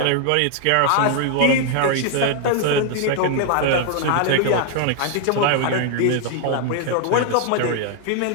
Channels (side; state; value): both; different; correlation 0.00